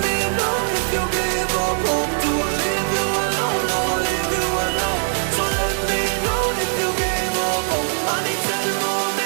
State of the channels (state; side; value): silent; left; digital silence